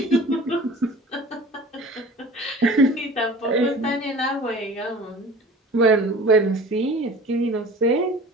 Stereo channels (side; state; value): both; normal; correlation 0.42